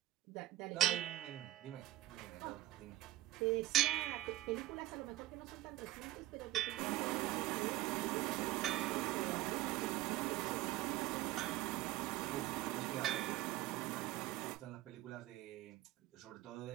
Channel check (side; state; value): left; quieter; 15.5 dB